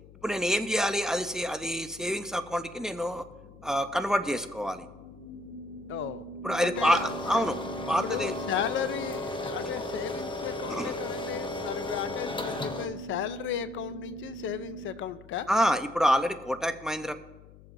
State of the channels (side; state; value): left; noise; hum, 21 dB below the sound